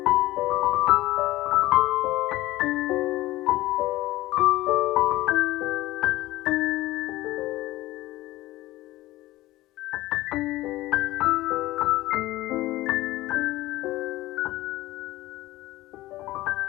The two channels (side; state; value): right; quieter; 17.5 dB